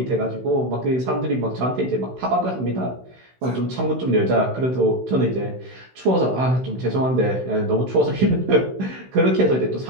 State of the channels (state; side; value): late; left; 16 ms